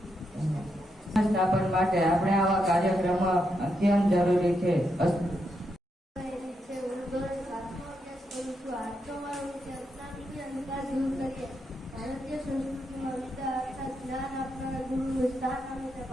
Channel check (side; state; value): both; normal; correlation 0.82